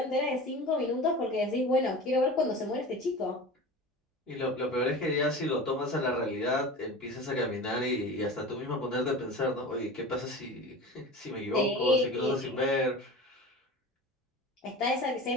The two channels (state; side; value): normal; both; correlation 0.34